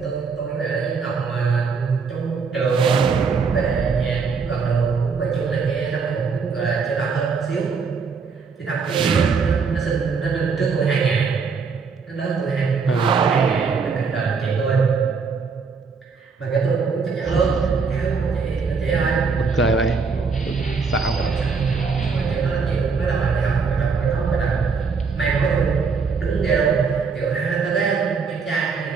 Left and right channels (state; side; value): quieter; left; 5.2 dB